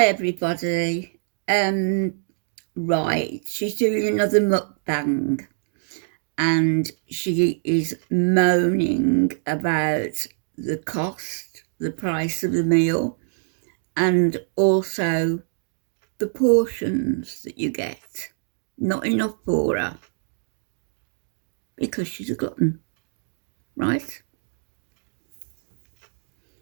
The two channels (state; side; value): silent; left; digital silence